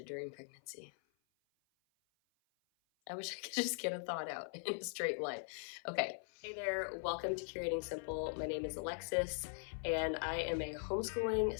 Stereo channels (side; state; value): right; silent; 50 dB below the other